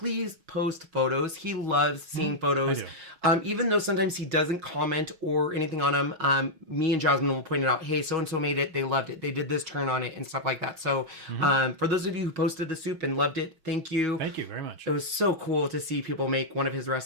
post photos. He loves seeing photos. Even though sometimes he doesn't comment or anything on them, me and Jasmine will point it out. Hey, so-and-so made it. They loved it. They did this turn on it and stuff like that. So for those of you who posted the soup and loved it, thank you. Thank you very much. It was so cool to see people make one of his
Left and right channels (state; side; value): late; left; 6.2 ms